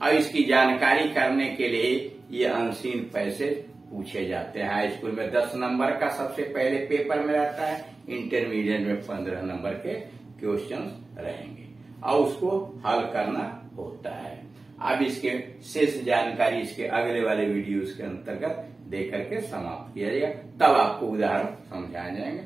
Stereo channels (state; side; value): quieter; left; 3.5 dB